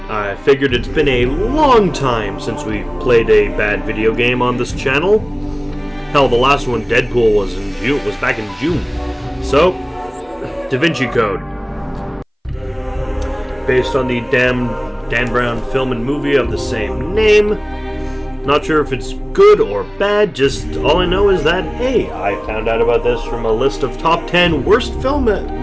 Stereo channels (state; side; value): identical; both; correlation 1.00